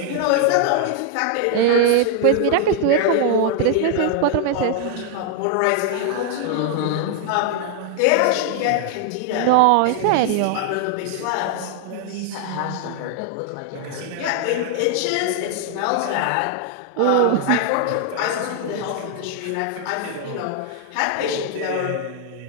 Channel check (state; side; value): different; both; correlation 0.00